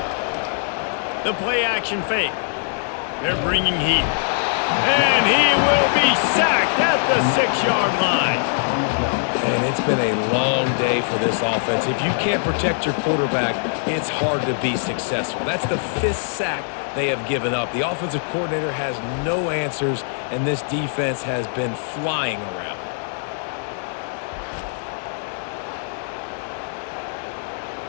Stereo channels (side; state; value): right; silent; digital silence